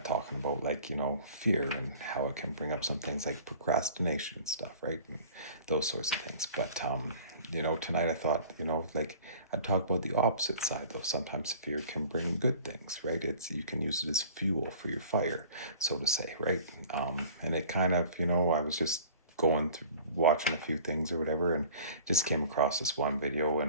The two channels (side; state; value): both; inverted; correlation -0.46